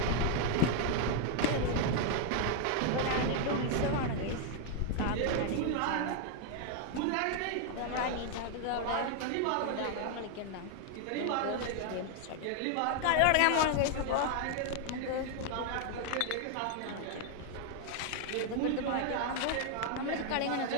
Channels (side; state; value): both; different; correlation 0.00